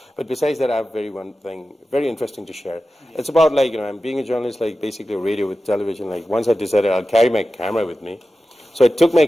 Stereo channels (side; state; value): both; normal; correlation 0.94